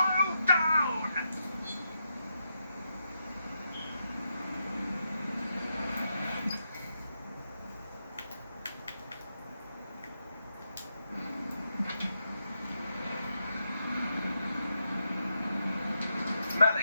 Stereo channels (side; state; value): both; inverted; correlation -0.83